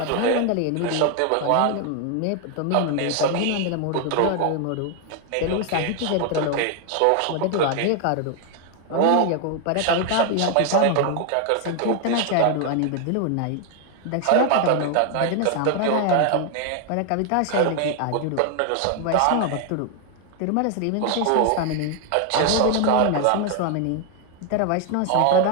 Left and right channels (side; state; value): both; different; correlation 0.00